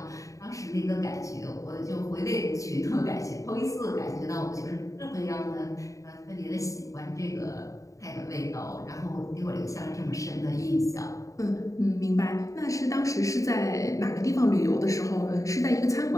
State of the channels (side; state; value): right; late; 0.16 ms